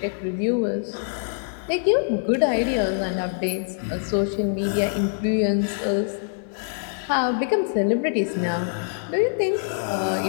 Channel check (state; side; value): silent; right; 62 dB below the other